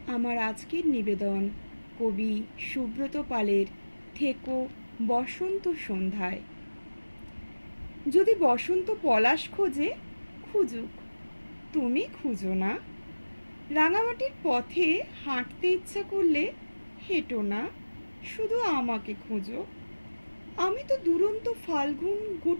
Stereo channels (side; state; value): both; inverted; correlation -1.00